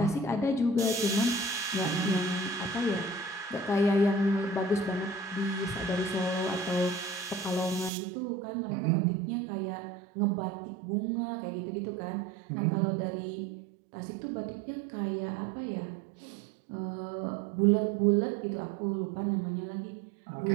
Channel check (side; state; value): left; drops out; at 7.9 s